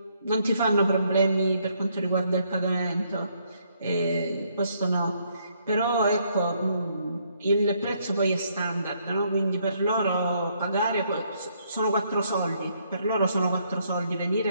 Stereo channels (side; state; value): both; inverted; correlation -0.71